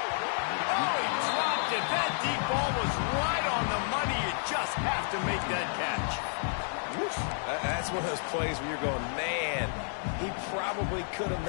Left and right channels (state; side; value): silent; right; digital silence